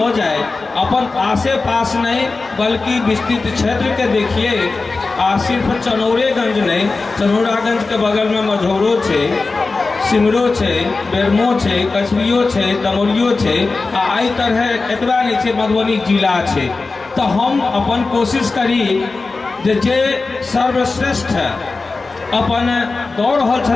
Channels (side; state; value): right; quieter; 3.8 dB